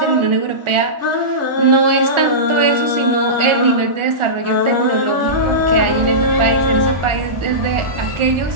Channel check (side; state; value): left; late; 1.4 ms